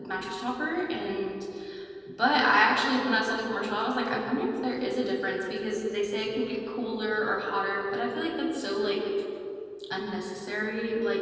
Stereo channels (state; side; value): identical; both; correlation 1.00